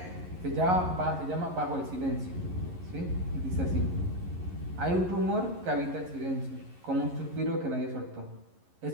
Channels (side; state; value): left; late; 11 ms